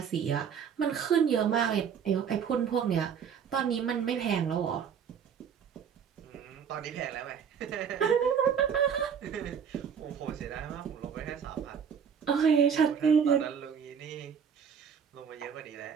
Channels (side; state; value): left; quieter; 7.3 dB